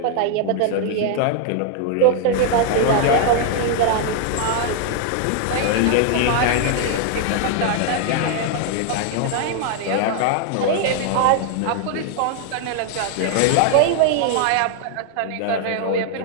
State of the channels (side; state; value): both; different; correlation 0.00